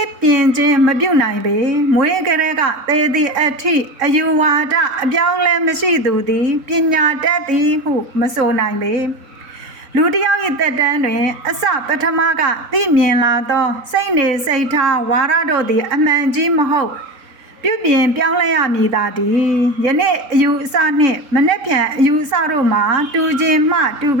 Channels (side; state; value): left; late; 3.6 ms